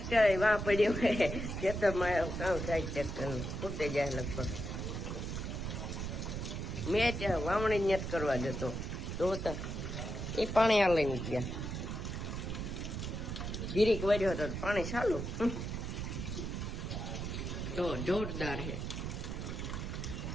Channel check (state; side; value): noise; right; rumble, 4 dB below the sound